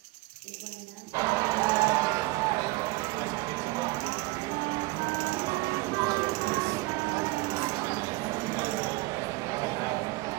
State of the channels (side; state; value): left; quieter; 21.7 dB